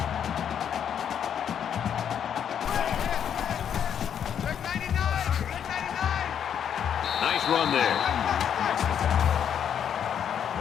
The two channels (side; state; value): right; quieter; 8.7 dB